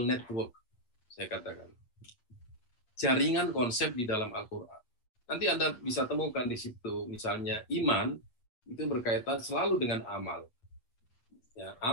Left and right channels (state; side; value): late; right; 8.5 ms